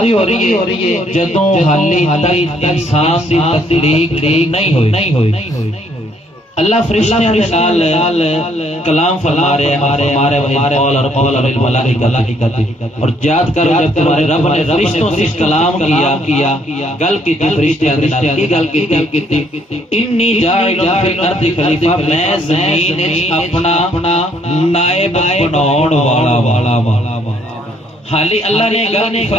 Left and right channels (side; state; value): both; normal; correlation 0.67